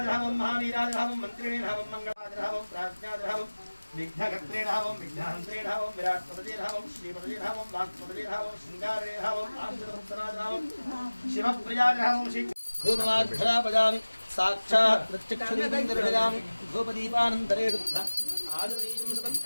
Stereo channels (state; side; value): inverted; both; correlation -1.00